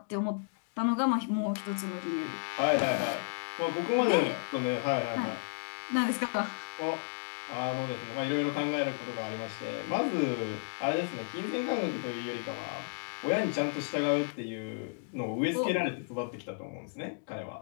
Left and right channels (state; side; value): silent; right; digital silence